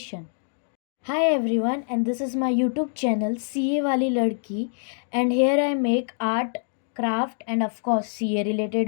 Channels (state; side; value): silent; right; digital silence